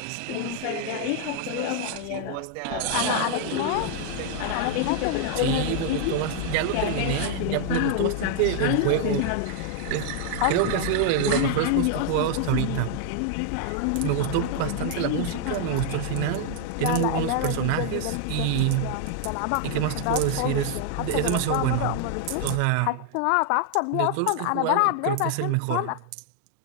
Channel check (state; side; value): different; both; correlation 0.00